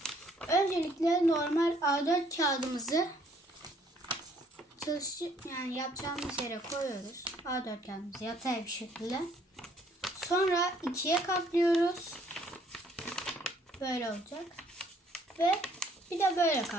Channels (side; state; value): both; normal; correlation 0.63